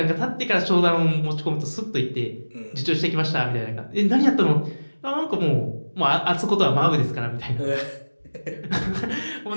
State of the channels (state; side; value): inverted; both; correlation -1.00